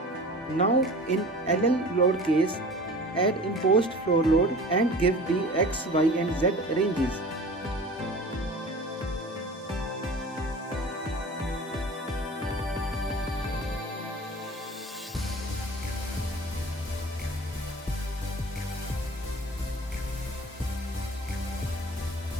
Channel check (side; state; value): both; normal; correlation 0.40